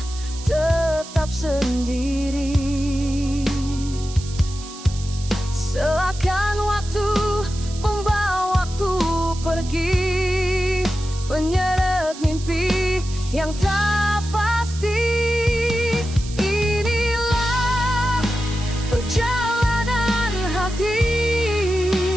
tetap sendiri. Seakan waktu membawaku pergi, menyeret mimpi yang tak pasti. Inilah perjalanan hati,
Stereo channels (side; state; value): right; noise; hiss, 15 dB below the sound